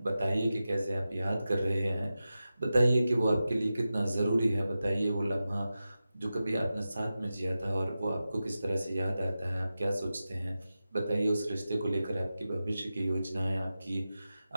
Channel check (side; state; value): both; inverted; correlation -0.93